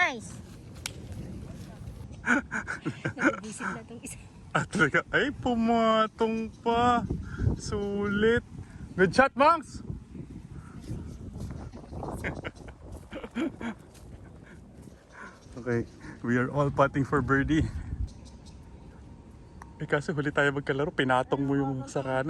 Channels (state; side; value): identical; both; correlation 1.00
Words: Nag-visit na itong isa. At talaga, ay pumatong pa. Sulit. Good shot, Monks! Okay, we are all putting for birdie. Eh kasi huli tayo magkalaro, pinatong mo yung sa